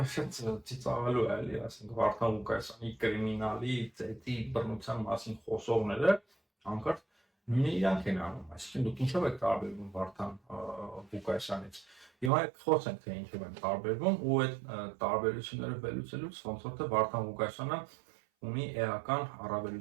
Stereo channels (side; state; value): left; drops out; at 12.3 s